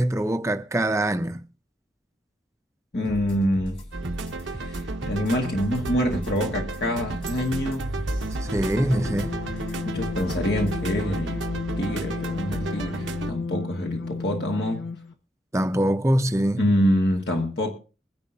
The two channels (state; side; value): normal; both; correlation 0.76